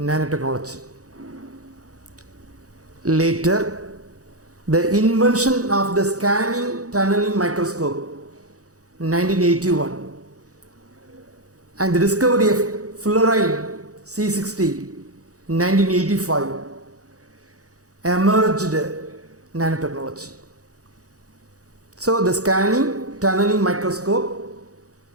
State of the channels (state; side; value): late; left; 0.66 ms